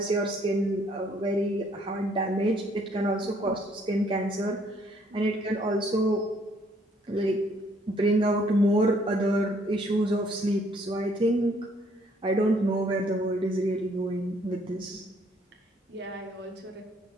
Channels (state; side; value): normal; both; correlation 0.65